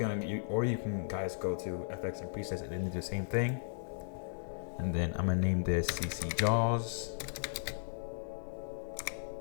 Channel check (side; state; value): right; silent; digital silence